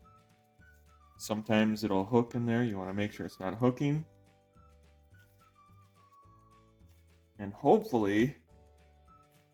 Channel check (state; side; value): identical; both; correlation 1.00